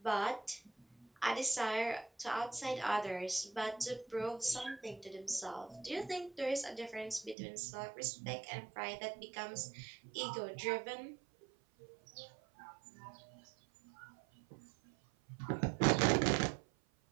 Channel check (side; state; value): left; drops out; at 7.4 s